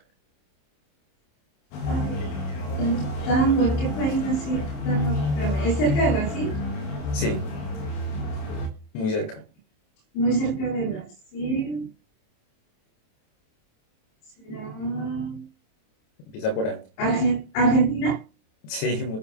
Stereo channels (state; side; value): late; right; 27 ms